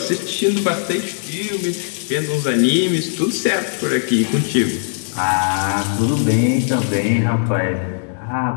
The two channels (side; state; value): right; silent; digital silence